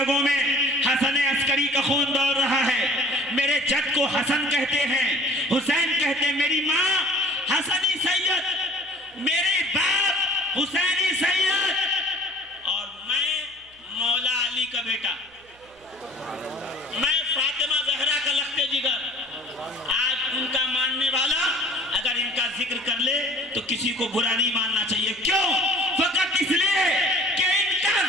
میں حسن عسکری کا خون دوڑ رہا ہے، میرے جد کو حسن کہتے ہیں، حسین کہتے ہیں، میری ماں حسنی سید، میرے باپ حسینی سید، اور میں مولا علی کا بیٹا، میں فاطمہ زہرا کا لخت جگر۔ آج ان کا ماننے والا اگر ان کا ذکر کر لے تو کسی کو برا نہیں ماننا چاہیے۔ کیوں؟ فقط اس لیے کہ ان کا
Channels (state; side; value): noise; right; hum, 30 dB below the sound